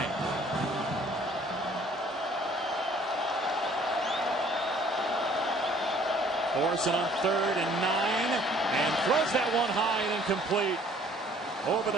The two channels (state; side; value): normal; both; correlation 0.57